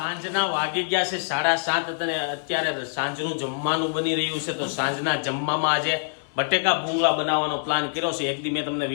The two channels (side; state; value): right; silent; 62 dB below the other